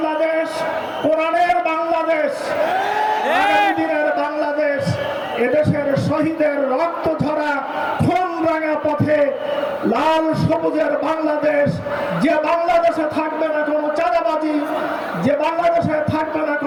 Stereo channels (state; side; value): identical; both; correlation 1.00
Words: কোরআনের বাংলাদেশ, আগামী দিনের বাংলাদেশ এদেশের শহীদের রক্ত ঝরা খুন রাঙা পথে লাল সবুজের বাংলাদেশ, যে বাংলাদেশে থাকবে না কোনো চাঁদাবাজি, যে বাংলাদেশে থাকবে না